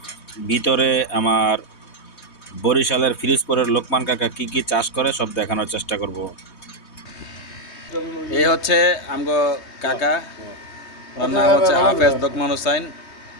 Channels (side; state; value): right; late; 3.2 ms